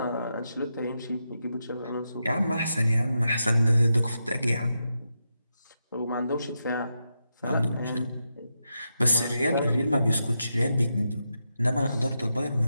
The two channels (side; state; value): both; inverted; correlation -0.86